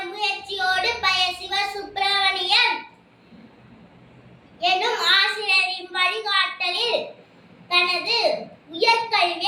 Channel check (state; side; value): identical; both; correlation 1.00